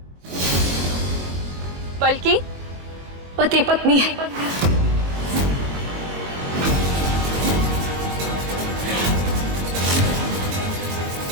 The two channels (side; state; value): left; late; 22 ms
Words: बल्कि पति पत्नी है।